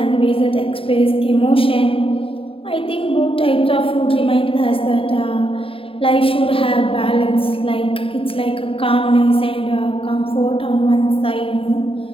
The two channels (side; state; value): right; late; 0.27 ms